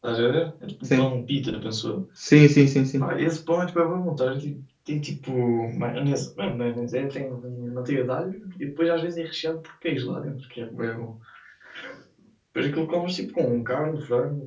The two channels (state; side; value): identical; both; correlation 1.00